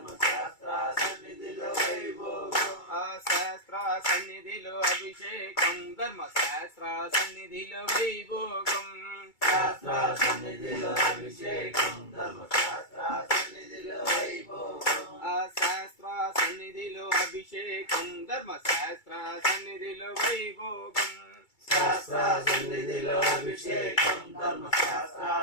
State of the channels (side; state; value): right; late; 2.3 ms